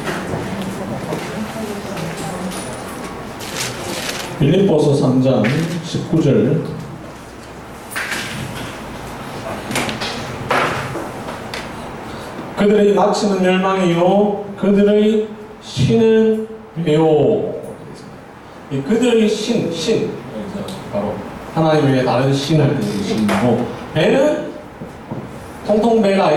빌립보서 3장 19절 그들의 마치는 멸망이요 그들의 신은 배요. 그들의 신 바로 하나님 외에 다른 신을 뜻하는 신이고, 배는 통통 배가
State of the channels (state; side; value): identical; both; correlation 1.00